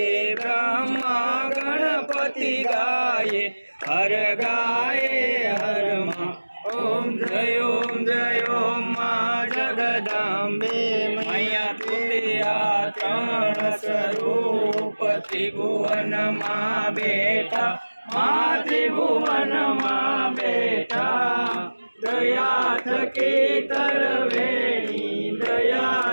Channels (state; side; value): inverted; both; correlation -1.00